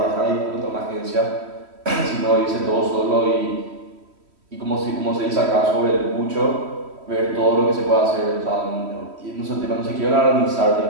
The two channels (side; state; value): left; late; 3.1 ms